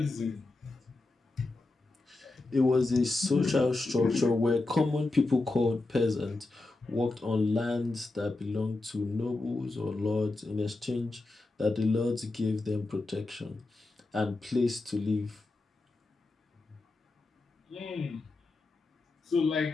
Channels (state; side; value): quieter; right; 3.1 dB